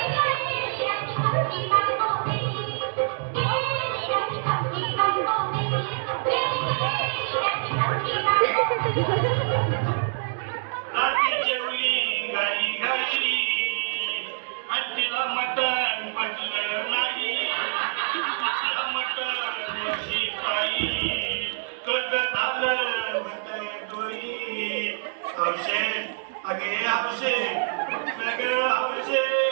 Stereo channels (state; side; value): silent; left; digital silence